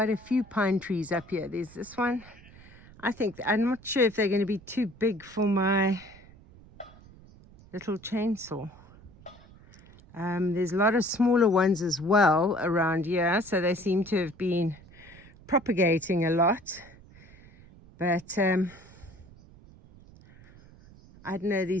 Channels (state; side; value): noise; right; rumble, 23 dB below the sound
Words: a few pine trees up here. There's this one. I'm not sure if they're going to be too big for my little chainsaw. There's a lot of smaller ones as well around here, so they seem to have been propagating a lot. But I don't know,